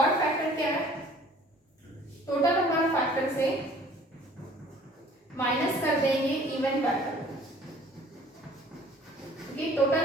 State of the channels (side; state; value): both; normal; correlation 0.53